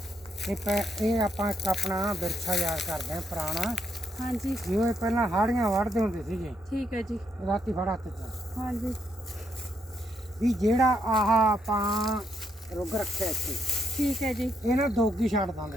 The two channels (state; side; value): normal; both; correlation 0.76